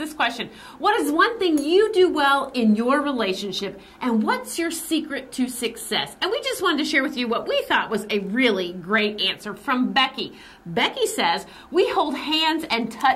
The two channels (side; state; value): both; identical; correlation 1.00